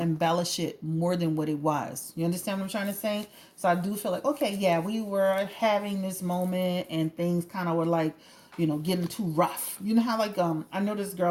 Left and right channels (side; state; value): both; identical; correlation 1.00